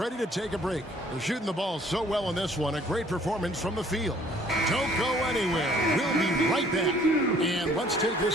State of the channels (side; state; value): both; normal; correlation 0.58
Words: to take a break. They're shooting the ball so well in this one. A great performance from the field. Don't go anywhere. We'll be right back. And let's take